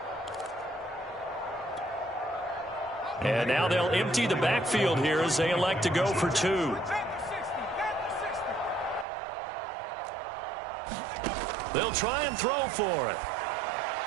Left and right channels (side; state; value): left; drops out; at 9.1 s